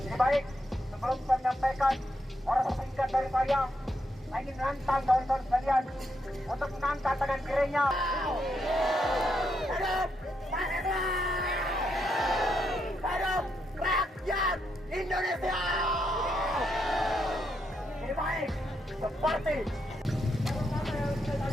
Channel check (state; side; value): normal; both; correlation 0.80